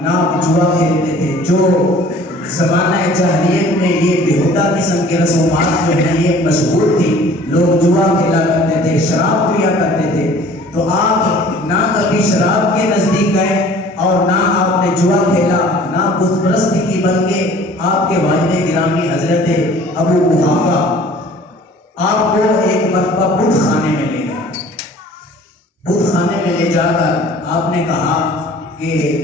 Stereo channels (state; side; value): normal; both; correlation 0.50